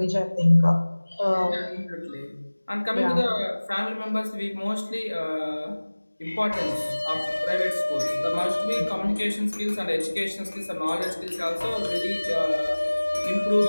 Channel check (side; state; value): both; inverted; correlation -1.00